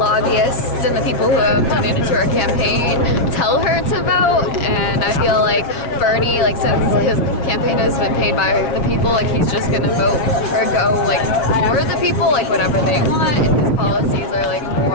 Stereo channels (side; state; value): right; late; 7.1 ms